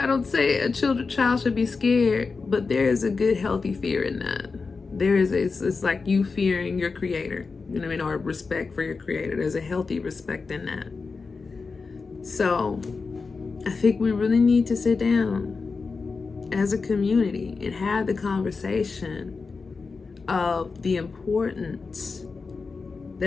don't say a child should be scared, but there is a good, healthy fear in that. It's like you fearing your creator, you know what I mean, or respect for your creator. There's a healthy respect in that. So I think we really need to sit down as a community and have the conversation of the importance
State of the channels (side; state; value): right; quieter; 4.5 dB